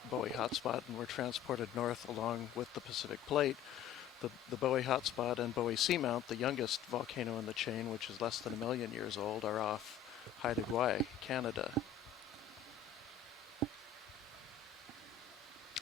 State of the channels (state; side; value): quieter; right; 8.5 dB